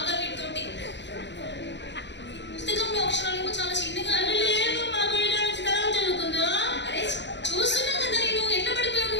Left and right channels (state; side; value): late; right; 0.52 ms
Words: వీటితోటి. పుస్తకంలో అక్షరాలు చాలా చిన్నగా. చదువుకుందా? అరే చూస్తున్నా కదా నేను, ఎట్లా పడిపోయావు